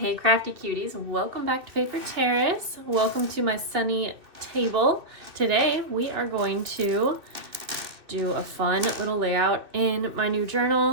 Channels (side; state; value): left; late; 2.6 ms